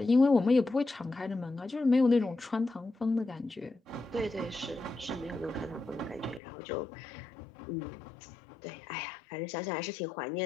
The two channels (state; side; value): drops out; right; at 6.4 s